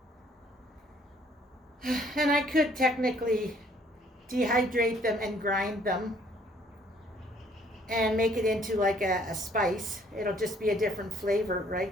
And I could technically dehydrate them and grind them and make it into like a spice. It'll just be a different flavor, right?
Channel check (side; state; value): both; normal; correlation 0.62